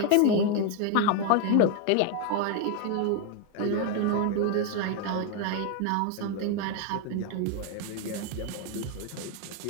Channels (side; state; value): both; different; correlation 0.01